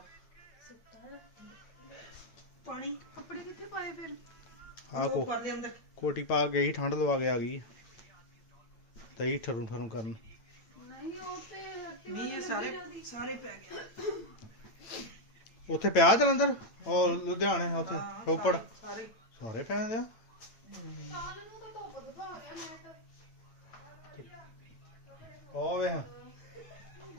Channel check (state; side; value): late; right; 9.0 ms